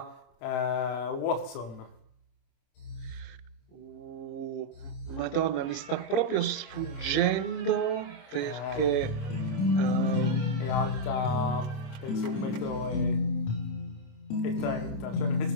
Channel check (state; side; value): late; right; 26 ms